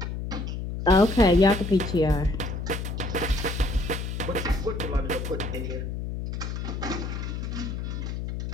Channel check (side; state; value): left; noise; hum, 4 dB below the sound